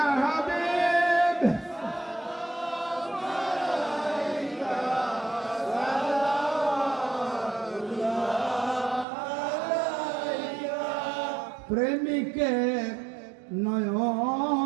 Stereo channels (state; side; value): drops out; left; at 9.1 s